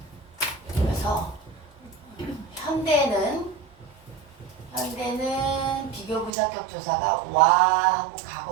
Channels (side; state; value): left; drops out; at 6.3 s